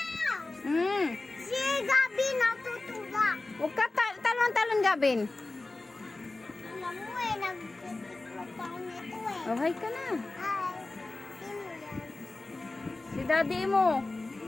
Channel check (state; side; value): quieter; right; 3.1 dB